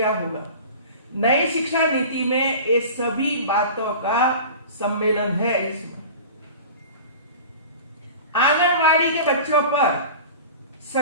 होगा। नई शिक्षा नीति में ये सभी बातों का सम्मेलन है। इसमें आंगनवाड़ी के बच्चों पर,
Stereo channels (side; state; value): both; inverted; correlation -0.37